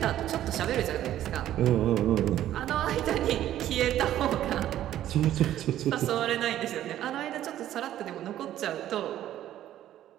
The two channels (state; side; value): quieter; left; 12.4 dB